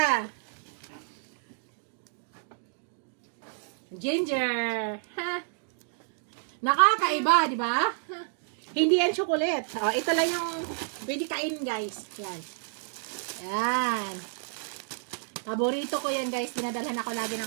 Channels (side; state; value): left; silent; digital silence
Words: Ginger. Ha? Nakakaiba, di ba? Hindi yan chocolate. Oh, ito lang yung pwede kain, guys. Yan. Yan. Paborito ko yan, guys. Dinadalhan ako lagi